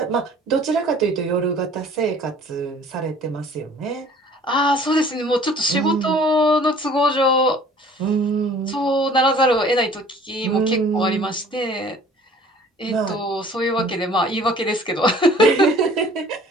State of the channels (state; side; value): normal; both; correlation 0.51